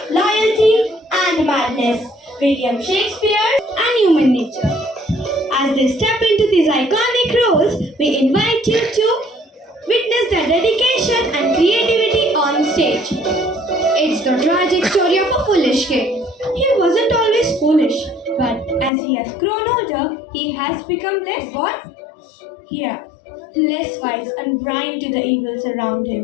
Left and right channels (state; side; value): drops out; right; at 18.9 s